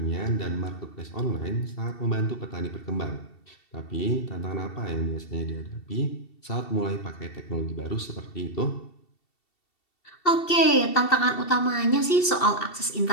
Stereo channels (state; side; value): late; right; 2.7 ms